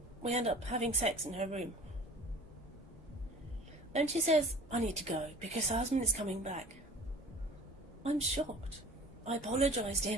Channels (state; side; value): normal; both; correlation 0.45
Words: we end up having sex in her room. Then she says, I need to go because her husband is coming back. I'm shocked. I apologise to